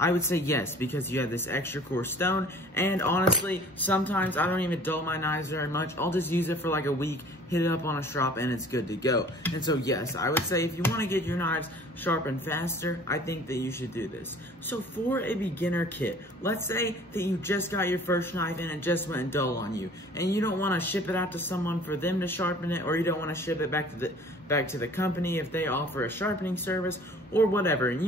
would say yes, because you have this extra core stone. And honestly, sometimes I don't even dull my knives very much. I'll just use it for like a week, hit it up on a strop, and it's good to go. And so yes, I would say if you want to get your knives sharpened faster, I think that you should do this. So for a beginner kit, let's say that you just got your first knife and it just went dull on you, and you don't want to ship it out to someone for them to sharpen it, or you don't want to ship it back to the company if they offer a sharpening service or whatever, and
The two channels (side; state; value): both; normal; correlation 0.49